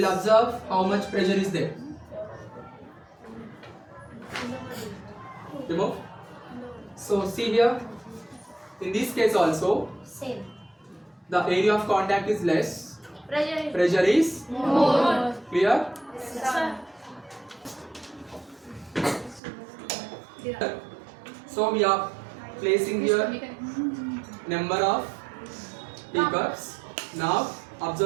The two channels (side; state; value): left; drops out; at 19.4 s